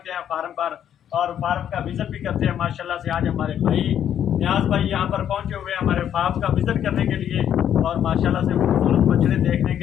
हैं फार्म पर और फार्म का विज़िट भी करते हैं। माशाल्लाह से आज हमारे भाई न्याज भाई यहाँ पर पहुँचे हुए हैं हमारे फार्म का विज़िट करने के लिए और माशाल्लाह से खूबसूरत बछड़े देखने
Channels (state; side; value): quieter; right; 9.8 dB